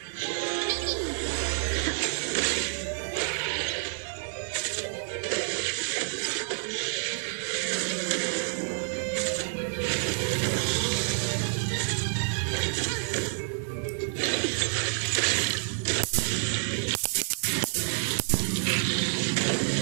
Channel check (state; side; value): silent; left; digital silence